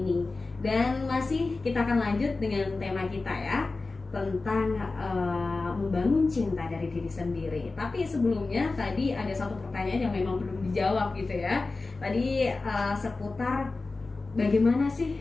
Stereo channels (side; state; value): right; quieter; 3.6 dB